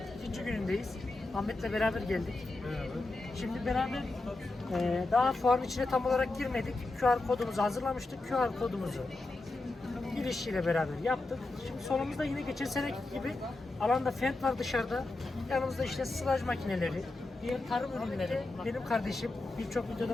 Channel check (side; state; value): right; quieter; 3.1 dB